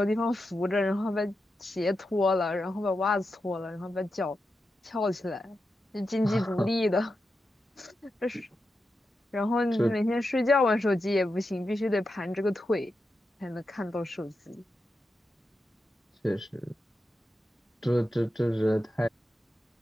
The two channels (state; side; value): normal; both; correlation 0.89